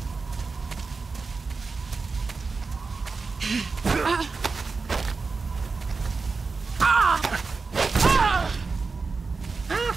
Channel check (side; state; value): left; quieter; 4.4 dB